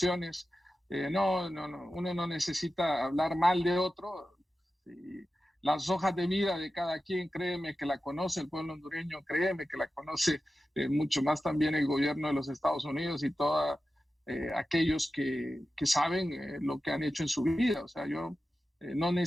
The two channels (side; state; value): both; normal; correlation 0.93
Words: No, uno no necesita hablar mal de otro. Y las hojas de vida de cada quien, créeme que la conoce el pueblo hondureño, créeme que la conoce mucho más también el gobierno de los Estados Unidos y todos aquellos que saben lo que han hecho en su vida. O sea, yo no